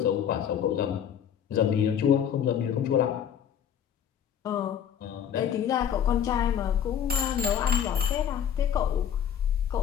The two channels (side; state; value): right; quieter; 8.9 dB